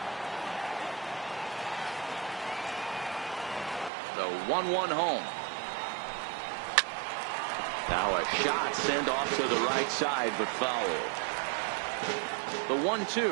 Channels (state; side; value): drops out; left; at 3.9 s